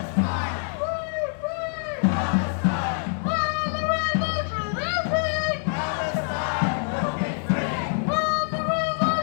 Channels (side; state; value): right; silent; digital silence